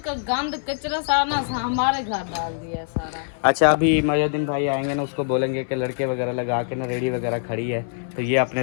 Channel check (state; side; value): silent; right; 63 dB below the other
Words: का गंद कचरा सारा हमारे घर डाल दिया सारा। अच्छा, अभी मुहम्मदुद्दीन भाई आएंगे ना, उसको बोलेंगे कि लड़के वगैरह लगा के ना रेडी वगैरह खड़ी है, तो ये अपने